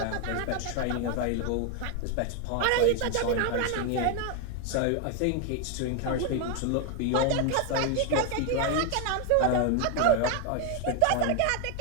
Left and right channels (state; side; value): different; both; correlation 0.01